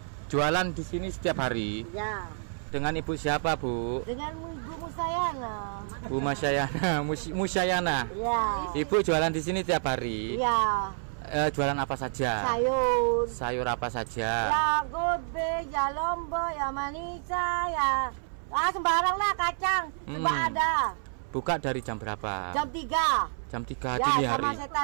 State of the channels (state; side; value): silent; left; 59 dB below the other